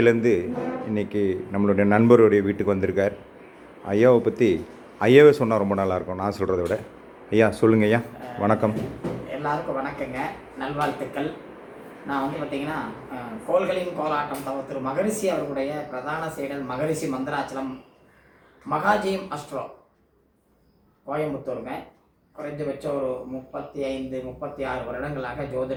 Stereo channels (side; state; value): both; identical; correlation 1.00